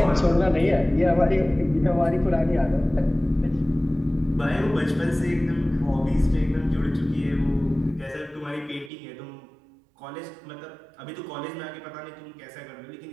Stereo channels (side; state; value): left; drops out; at 8.9 s